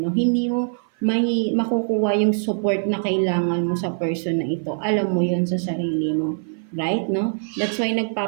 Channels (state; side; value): silent; left; 55 dB below the other